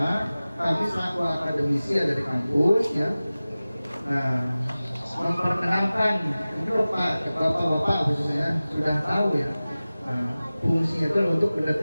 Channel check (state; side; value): inverted; both; correlation -0.97